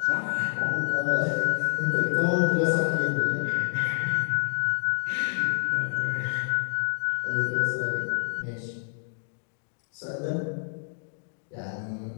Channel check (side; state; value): right; silent; digital silence